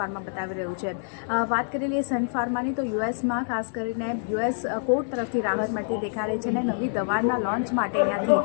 બતાવી રહ્યું છે. વાત કરી લઈએ સન ફાર્માની તો યુએસમાં ખાસ કરીને યુએસ કોર્ટ તરફથી રાહત મળતી દેખાઈ રહી છે અને નવી દવાના લોન્ચ માટે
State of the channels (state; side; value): silent; right; digital silence